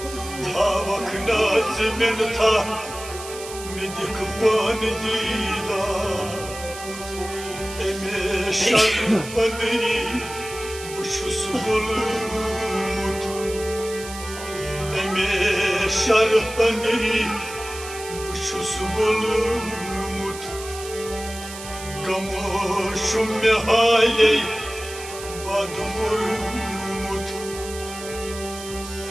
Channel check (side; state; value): right; noise; hiss, 12 dB below the sound